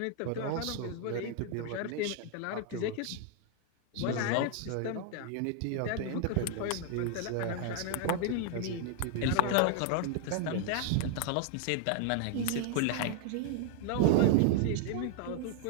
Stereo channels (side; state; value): both; different; correlation 0.00